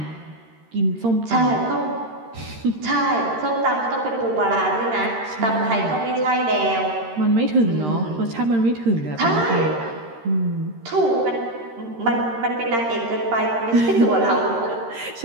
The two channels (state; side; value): late; left; 13 ms